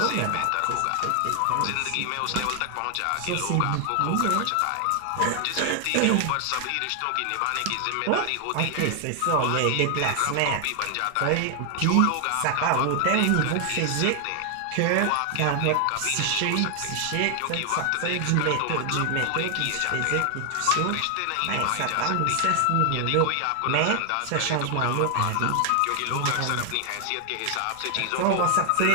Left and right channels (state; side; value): different; both; correlation 0.00